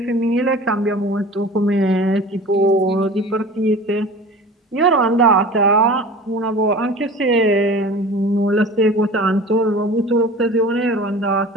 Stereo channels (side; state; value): both; normal; correlation 0.40